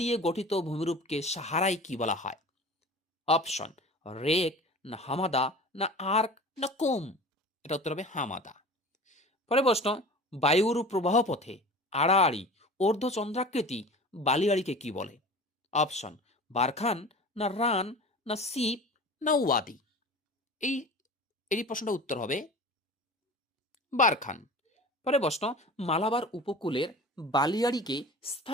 দিয়ে গঠিত ভূমিরূপকে সাহারায় কি বলা হয়? অপশন, রেক না হামাদা না আর্ক না কোম? এটা উত্তর হবে হামাদা। পরে প্রশ্ন, বায়ুর প্রবাহ পথে আড়াআড়ি অর্ধচন্দ্রাকৃতি বালিয়াড়িকে কি বলে? অপশন, বারখান না রান না সিপ না ওয়াদি? এই প্রশ্নটা উত্তর হবে বারখান। পরে প্রশ্ন, মালাবার উপকূলের বালিয়াড়িকে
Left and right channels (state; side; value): normal; both; correlation 0.38